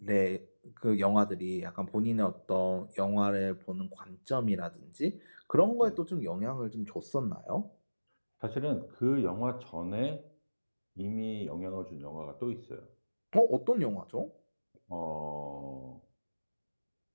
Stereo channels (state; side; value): inverted; both; correlation -1.00